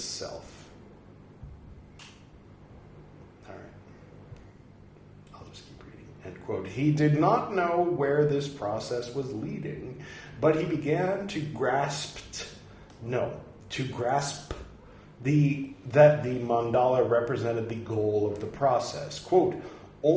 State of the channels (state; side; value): identical; both; correlation 1.00